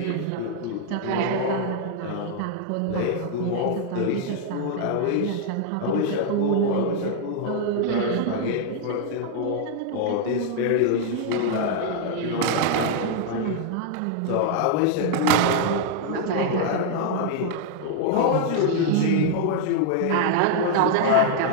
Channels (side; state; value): both; different; correlation 0.00